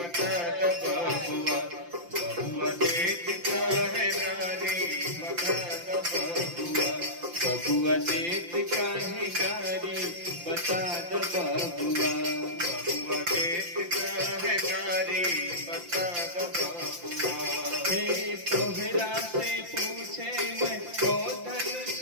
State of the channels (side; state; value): left; late; 5.8 ms